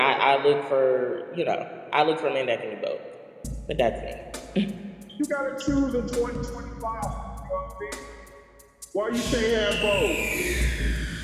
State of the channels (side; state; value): both; identical; correlation 1.00